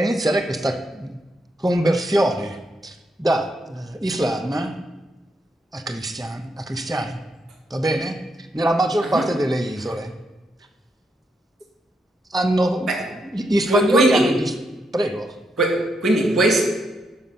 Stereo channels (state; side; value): normal; both; correlation 0.80